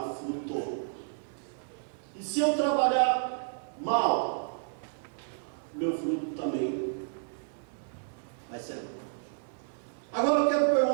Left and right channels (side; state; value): left; silent; 57 dB below the other